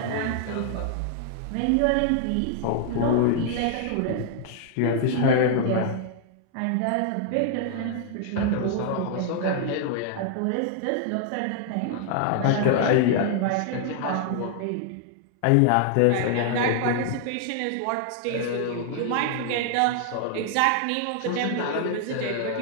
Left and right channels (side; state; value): both; different; correlation 0.00